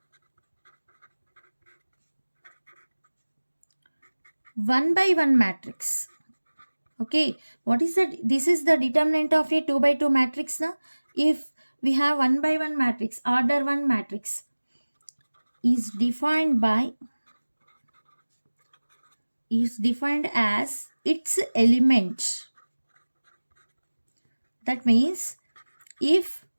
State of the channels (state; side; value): inverted; both; correlation -1.00